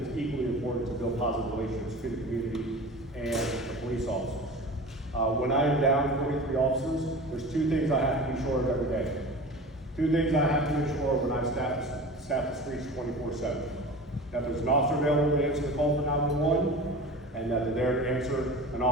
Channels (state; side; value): normal; both; correlation 0.35